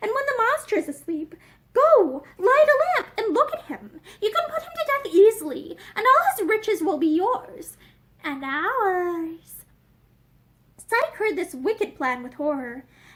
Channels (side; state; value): both; identical; correlation 1.00